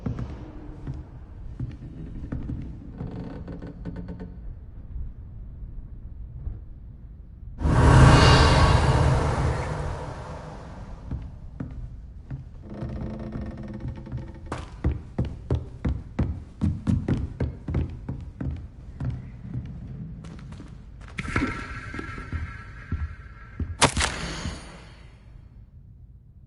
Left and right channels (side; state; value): both; identical; correlation 1.00